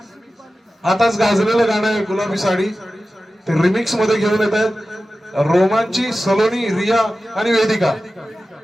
आताच गाजलेलं गाणं आहे गुलाबी साडी, ते रिमिक्स मध्ये घेऊन येत आहेत रोमांची, सलोनी, रिया आणि वेदिका.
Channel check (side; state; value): both; normal; correlation 0.94